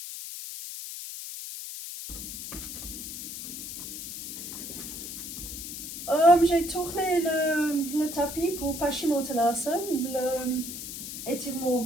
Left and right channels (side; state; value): left; noise; hiss, 8 dB below the sound